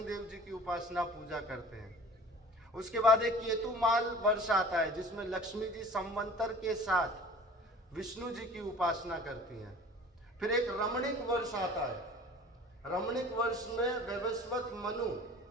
देव जी की उपासना पूजा करते हैं। उसके बाद एक केतुमाल वर्ष आता है, जिसमें लक्ष्मी जी संवंतर के साथ विष्णु जी की उपासना करती हैं। फिर एक रमणीक वर्ष आता है। रमणीक वर्ष में वैवस्वत मनु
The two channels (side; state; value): both; normal; correlation 0.45